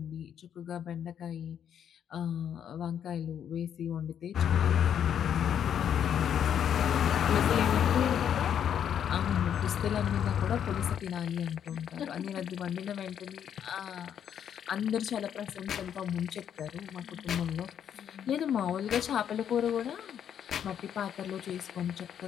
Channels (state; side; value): quieter; right; 9.0 dB